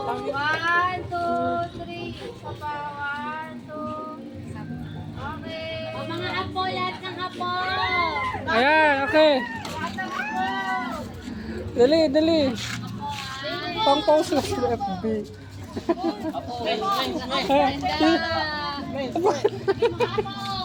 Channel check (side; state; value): both; identical; correlation 1.00